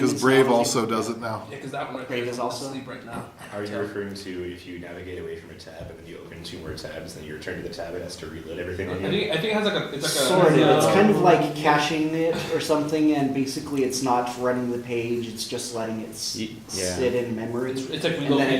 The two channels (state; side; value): identical; both; correlation 1.00